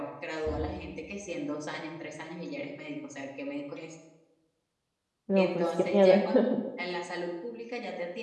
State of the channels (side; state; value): both; identical; correlation 1.00